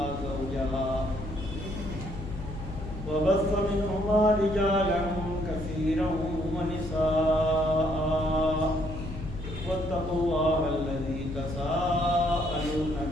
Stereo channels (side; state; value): left; noise; hum, 9 dB below the sound